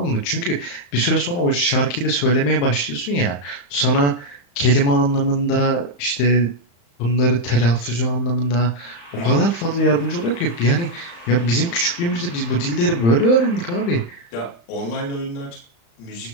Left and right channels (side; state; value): right; late; 35 ms